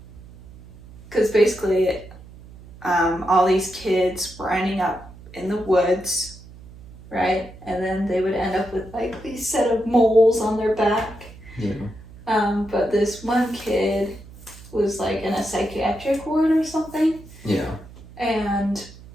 basically, all these kids were ending up in the woods. Right? And then they would end up with like these set of moles on their back. Yeah. But this one kid was like in a psychiatric ward or something. Yeah. And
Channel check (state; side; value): noise; right; hum, 19 dB below the sound